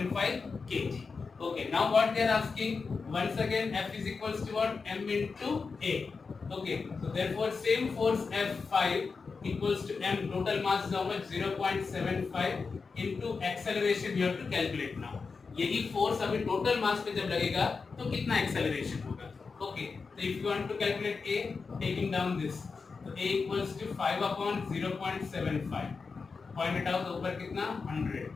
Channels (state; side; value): quieter; right; 4.8 dB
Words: kg. Okay, now what they are asking? Once again F is equals to what? M into A. Okay, so therefore same force F5 equals to M. Total mass is how much? 0.75 into acceleration you have to calculate now. यही force अभी total mass पे जब लगेगा तो कितना acceleration होगा? Okay, तो if you want to calculate a, taking down this, तो a equals to 5 upon 0.75. Point it out, ऊपर कितना? 100.